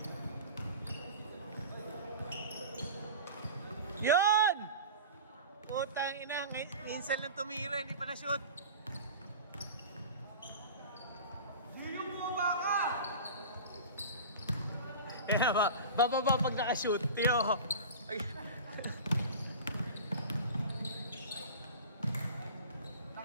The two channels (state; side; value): inverted; both; correlation -0.34